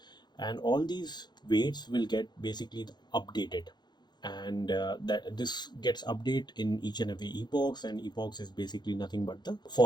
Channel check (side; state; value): right; late; 0.21 ms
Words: and all these weights will get basically updated, and that this gets updated in each and every epochs, and epochs is basically nothing but the